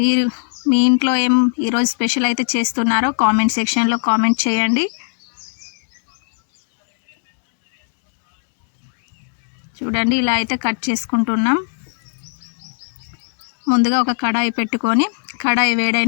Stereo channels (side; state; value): right; silent; 66 dB below the other